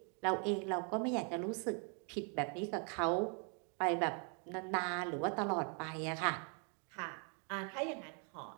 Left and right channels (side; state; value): left; quieter; 39.4 dB